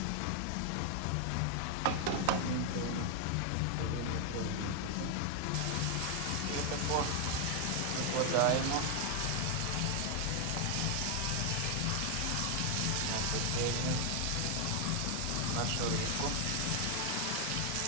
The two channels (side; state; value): both; different; correlation 0.00